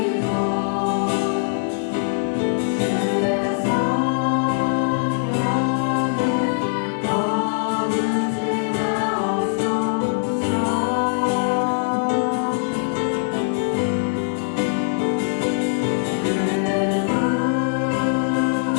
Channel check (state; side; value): silent; right; digital silence